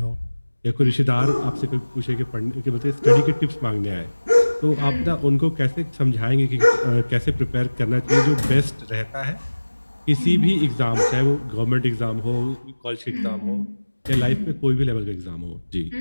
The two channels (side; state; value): both; inverted; correlation -1.00